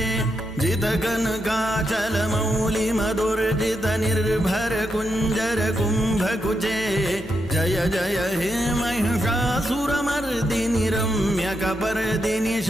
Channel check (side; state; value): both; normal; correlation 0.83